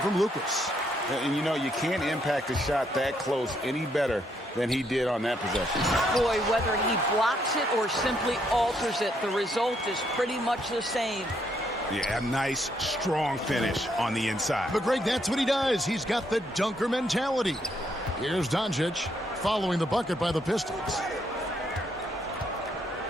from Lucas. And you know, you can't impact a shot that close any better than he did on that possession. Boy, whether he blocks it or simply alters it, the result is pretty much the same. Yeah, a nice, strong finish on the inside. But Greg, that's what he does. He's got the dunker mentality. Here's Doncic following the bucket by the Pistons.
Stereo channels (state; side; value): normal; both; correlation 0.73